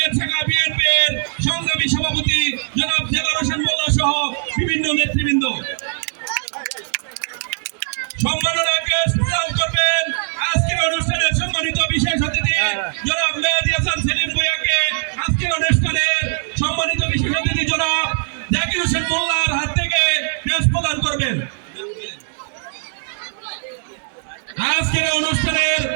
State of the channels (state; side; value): silent; left; digital silence